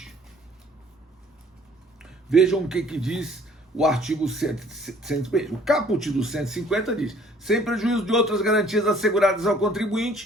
Vejam o que diz o artigo 150. O caput do 150 diz: sem prejuízo de outras garantias asseguradas ao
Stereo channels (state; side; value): normal; both; correlation 0.56